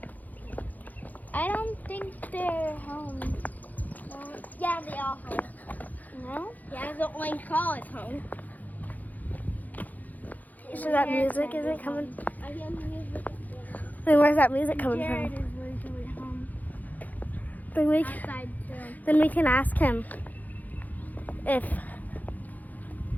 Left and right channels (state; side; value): late; right; 0.081 ms